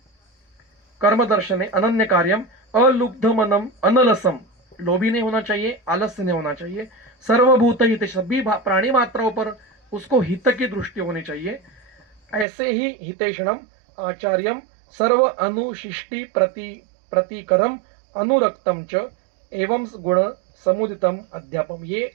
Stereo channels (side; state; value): left; drops out; at 12.5 s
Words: कर्म दर्शने अनन्य कार्यम अलुब्ध मनम अनलसम, लोभी नहीं होना चाहिए, आलस्य नहीं होना चाहिए। सर्वभूत हित, सभी प्राणी मात्राओं पर उसको हित की दृष्टि होनी चाहिए। ऐसे ही हितेषणम आचार्यम सर्व अनुशिष्टि प्रतिकरम अनुरक्तम च एवं गुण समुदितम अध्यापम, ये